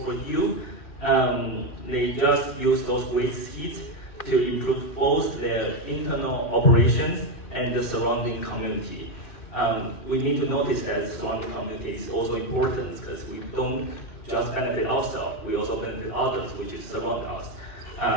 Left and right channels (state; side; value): late; right; 2.7 ms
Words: for you. They just use those waste heat to improve both their internal operations and the surrounding community. We need to notice that the surrounding community is also important because we don't just benefit ourselves, we also benefit others, which is surround us.